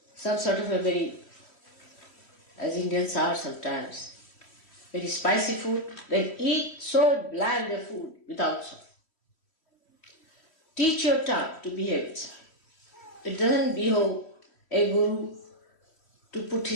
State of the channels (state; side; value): late; right; 3.1 ms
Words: some sort of a very, as Indians are sometimes, very spicy food, then eat so bland a food without salt. Teach your tongue to behave itself. It doesn't behove a guru to put